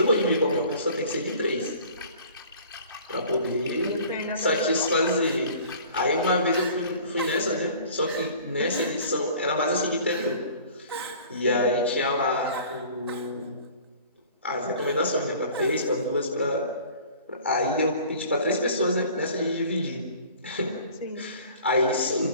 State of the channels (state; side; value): inverted; both; correlation -0.48